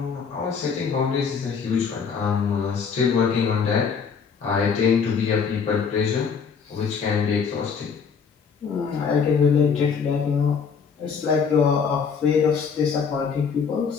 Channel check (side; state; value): right; quieter; 6.2 dB